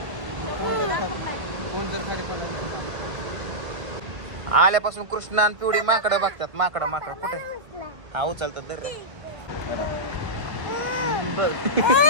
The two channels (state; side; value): late; left; 1.5 ms